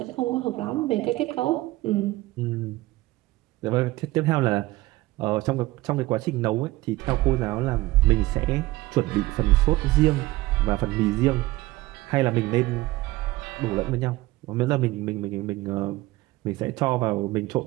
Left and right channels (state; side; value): quieter; left; 18.8 dB